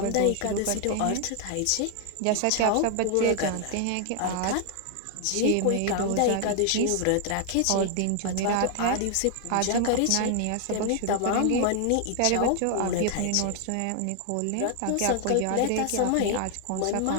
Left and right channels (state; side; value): different; both; correlation 0.00